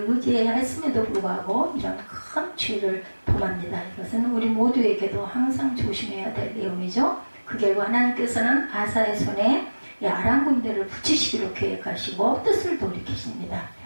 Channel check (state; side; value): inverted; both; correlation -1.00